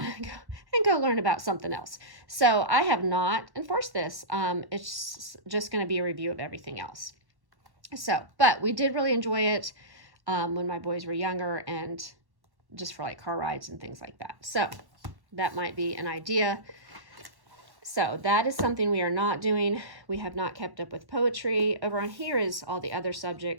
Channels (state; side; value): late; left; 1.1 ms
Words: and go learn about something else. So I have not enforced this. It's just going to be a review of everything else. So, but we did really enjoy it when my boys were younger, and just for like car rides and things like that. So that might be an idea. So that is something we are not doing. We have not kept up with poetry. Over on here is all the other